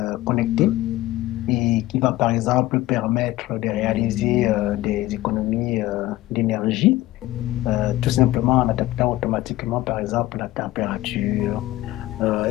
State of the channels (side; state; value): right; quieter; 16.6 dB